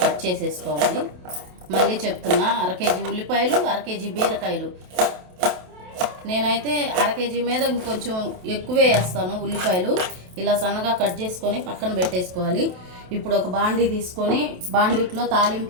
కట్ చేసేసుకోవాలి. మళ్ళీ చెప్తున్నా, 1/2 కేజీ ఉల్లిపాయలు, 1/2 కేజీ బీరకాయలు. నేనైతే 1/2 కేజీ మీద ఇంకొంచెం ఎక్కువే వేస్తాను ఉల్లిపాయలు. ఇలా సన్నగా కట్ చేసుకొని పక్కన పెట్టేసుకోవాలి. ఇప్పుడు ఒక బాండీ తీసుకొని బాండీలో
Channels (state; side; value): late; left; 27 ms